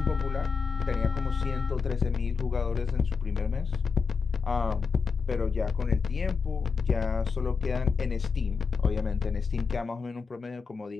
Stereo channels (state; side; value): quieter; right; 5.4 dB